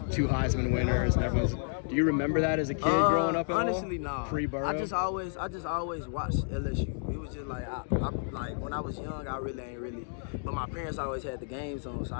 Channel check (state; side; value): silent; right; digital silence